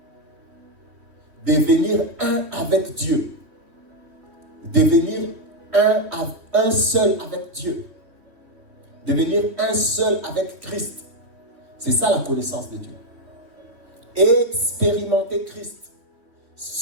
Devenir un avec Dieu. Devenir un seul avec Dieu. Devenir un seul avec Christ. C'est ça la connaissance de Dieu. Expérimenter Christ.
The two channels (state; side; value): late; left; 3.2 ms